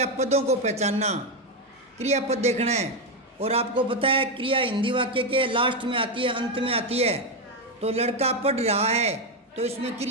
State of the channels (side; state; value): both; normal; correlation 0.07